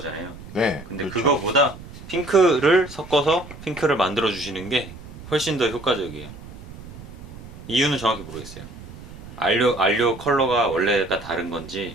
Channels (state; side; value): noise; right; rumble, 15 dB below the sound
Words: 네. 근데 그렇죠. 그거보다 핑크를 섞어서 핑크를 만들어 주시는 게 훨씬 더 효과적이에요. 이유는 정확히 모르겠어요. 알료 컬러가 원래가 다른